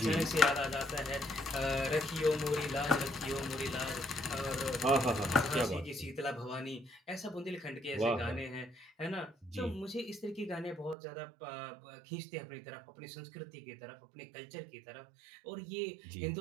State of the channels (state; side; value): drops out; left; at 11.0 s